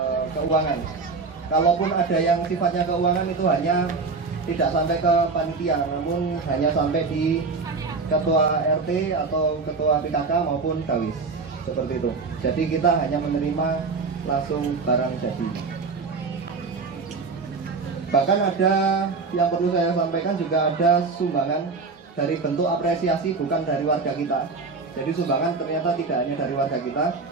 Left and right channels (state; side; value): quieter; left; 4.4 dB